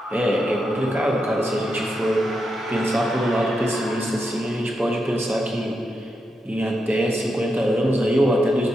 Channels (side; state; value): both; normal; correlation 0.85